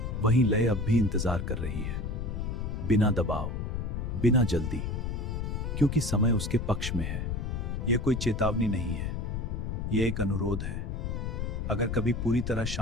वहीं लय अब भी इंतजार कर रही है, बिना दबाव, बिना जल्दी, क्योंकि समय उसके पक्ष में है। यह कोई चेतावनी नहीं है, यह एक अनुरोध है। अगर कभी पूरी तरह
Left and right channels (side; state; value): left; noise; rumble, 2 dB below the sound